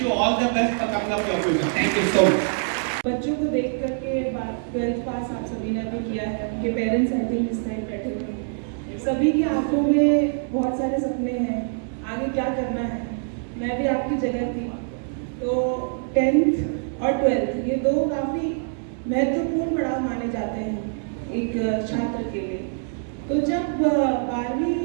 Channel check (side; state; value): left; silent; 62 dB below the other